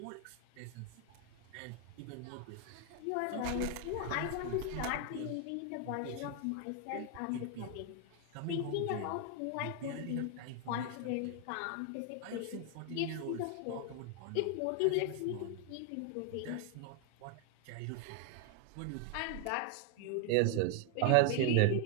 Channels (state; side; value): different; both; correlation 0.01